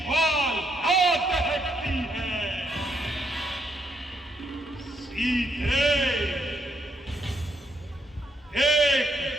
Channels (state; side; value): normal; both; correlation 0.75